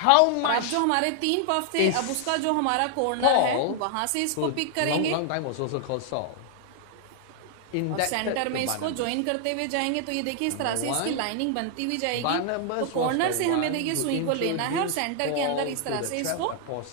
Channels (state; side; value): different; both; correlation 0.00